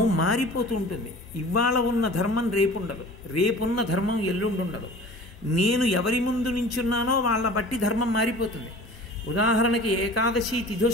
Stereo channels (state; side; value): normal; both; correlation 0.42